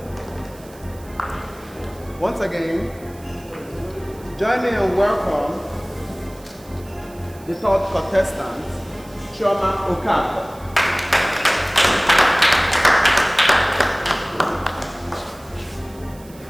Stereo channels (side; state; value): right; noise; hiss, 24 dB below the sound